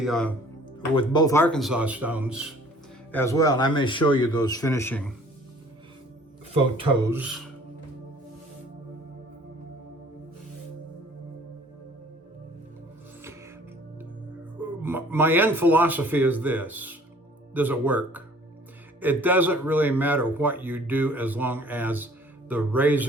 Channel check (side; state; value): both; normal; correlation 0.53